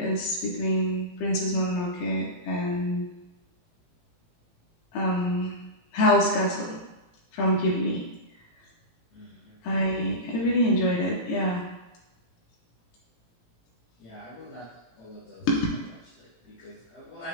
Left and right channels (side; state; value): right; late; 18 ms